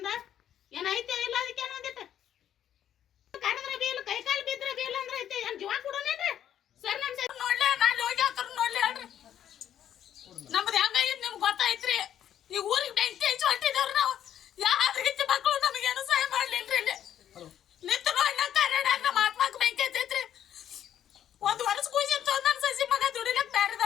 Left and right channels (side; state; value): right; quieter; 10.3 dB